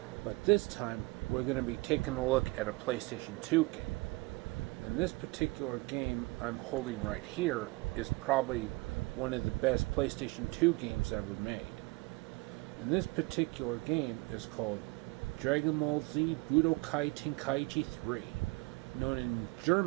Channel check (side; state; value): left; quieter; 25.0 dB